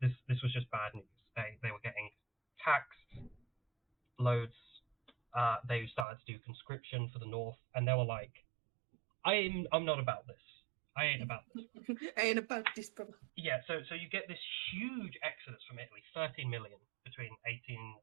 was just bad news. They were getting taxed loads. They started to do conscription for the North, and they were like, I'm not about this. I ain't about this. I ain't about this, brother. Yeah, so you get this huge exodus from Italy, 13 million between 1870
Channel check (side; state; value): left; drops out; at 6.1 s